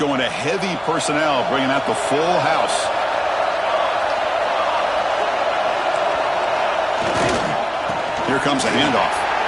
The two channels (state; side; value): identical; both; correlation 1.00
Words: to heavy personnel, bringing out the full house. Here comes a handoff.